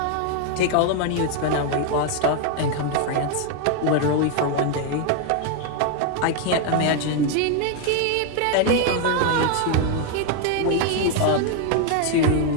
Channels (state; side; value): different; both; correlation 0.01